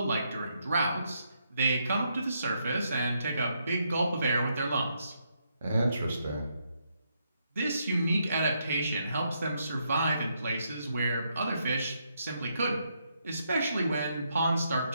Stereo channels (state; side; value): inverted; both; correlation -0.78